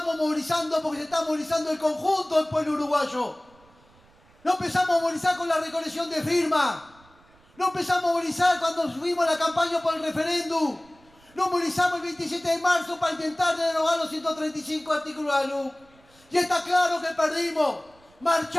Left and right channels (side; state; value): right; noise; rumble, 30 dB below the sound